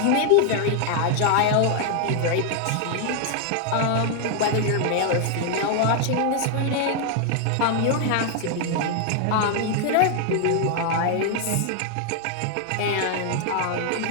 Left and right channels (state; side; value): different; both; correlation 0.00